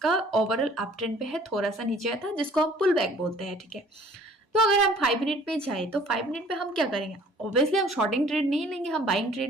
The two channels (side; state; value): both; normal; correlation 0.53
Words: ओवरऑल अप ट्रेंड पे है, थोड़ा सा नीचे आया था जिसको हम पुल बैक बोलते हैं, ठीक है। तो अगर हम 5 मिनट पे जाए तो 5 मिनट पे हम क्या करेंगे, ऑब्वियसली हम शॉर्टिंग ट्रेड नहीं लेंगे, हम बाइंग